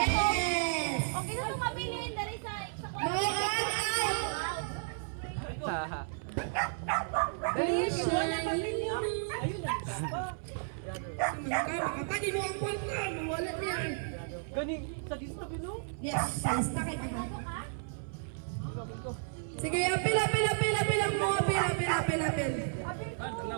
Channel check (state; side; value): silent; left; 56 dB below the other